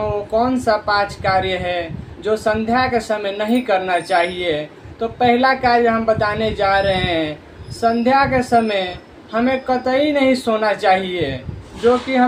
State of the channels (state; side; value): identical; both; correlation 1.00